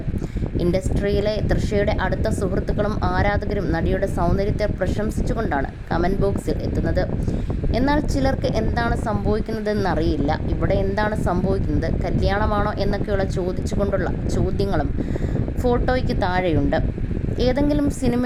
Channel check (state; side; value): identical; both; correlation 1.00